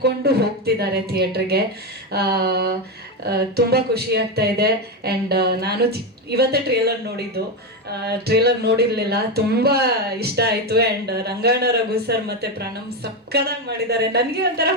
ಹೋಗ್ತಿದ್ದಾರೆ ಥಿಯೇಟ್ರಿಗೆ. ತುಂಬ ಖುಷಿ ಆಗ್ತಾ ಇದೆ. ಆ್ಯಂಡ್ ನಾನು ಇವತ್ತೇ ಟ್ರೇಲರ್ ನೋಡಿರಲಿಲ್ಲ, ತುಂಬ ಇಷ್ಟ ಆಯಿತು. ಆ್ಯಂಡ್ ರಂಗಣ್ಣ ರಘು ಸರ್ ಮತ್ತು ಪ್ರಣಮ್ ಸಕ್ಕದಾಗಿ ಮಾಡಿದ್ದಾರೆ. ನನಗೆ ಒಂಥರ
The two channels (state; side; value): normal; both; correlation 0.11